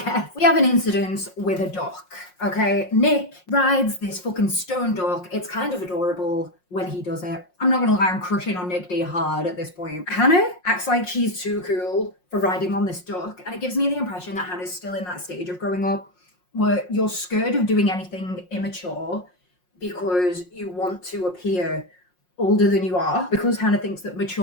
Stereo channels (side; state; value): right; late; 5.5 ms